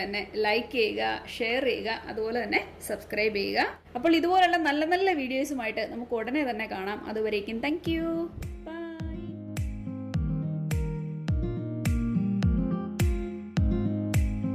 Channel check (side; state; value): both; identical; correlation 1.00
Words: തന്നെ ലൈക്ക് ചെയ്യുക, ഷെയർ ചെയ്യുക, അതുപോലെ തന്നെ സബ്സ്ക്രൈബ് ചെയ്യുക. അപ്പോൾ ഇതുപോലുള്ള നല്ല നല്ല വീഡിയോസുമായിട്ട് നമുക്ക് ഉടനെ തന്നെ കാണാം. അതുവരേക്കും താങ്ക് യു. ബൈ.